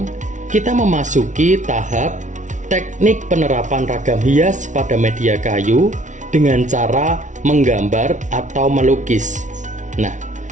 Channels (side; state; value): left; late; 0.36 ms